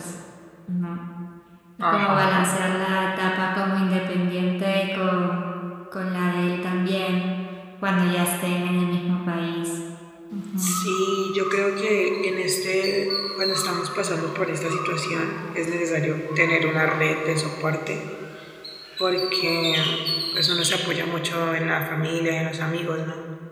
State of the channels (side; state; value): both; identical; correlation 1.00